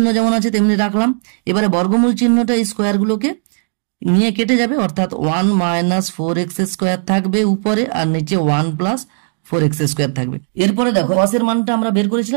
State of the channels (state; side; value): silent; left; digital silence